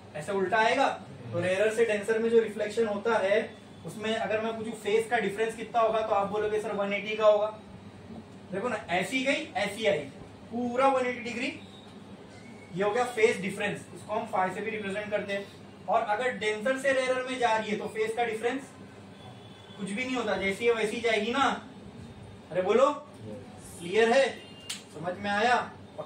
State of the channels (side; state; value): both; identical; correlation 1.00